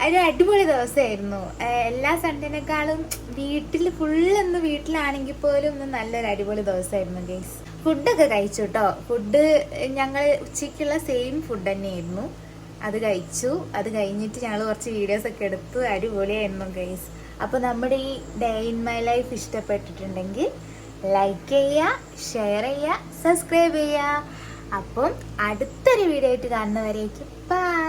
ഒരു അടിപൊളി ദിവസമായിരുന്നു. എല്ലാ സൺഡേനേക്കാളും ഫുള്ളൊന്ന് വീട്ടിലാണെങ്കിൽ പോലും ഇന്ന് നല്ലൊരു അടിപൊളി ദിവസമായിരുന്നു ഗെയ്സ്. ഫുഡൊക്കെ കഴിച്ചു കേട്ടോ. ഫുഡ് ഞങ്ങൾ ഉച്ചയ്ക്കുള്ള സെയിം ഫുഡ് തന്നെയായിരുന്നു. അത് കഴിച്ചു. അത് കഴിഞ്ഞിട്ട് ഞങ്ങൾ കുറച്ച് വീഡിയോസൊക്കെ എടുത്തു. അടിപൊളിയായിരുന്നു ഗെയ്സ്. അപ്പോൾ നമ്മുടെ ഈ ഡേ ഇൻ മൈ ലൈഫ് ഇഷ്ടപ്പെട്ടിട്ടുണ്ടെങ്കിൽ ലൈക്ക് ചെയ്യുക, ഷെയർ ചെയ്യുക, സബ്സ്ക്രൈബ് ചെയ്യുക. അപ്പം അടുത്തൊരു വീഡിയോ ആയിട്ട് കാണുന്നവരേക്കും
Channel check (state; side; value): identical; both; correlation 1.00